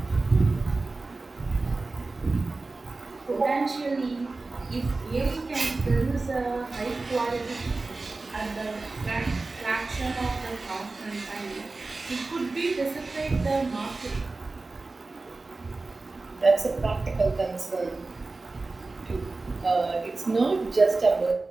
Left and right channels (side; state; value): left; quieter; 3.5 dB